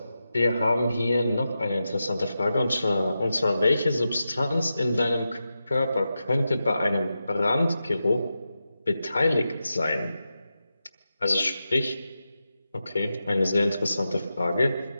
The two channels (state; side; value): inverted; both; correlation -0.90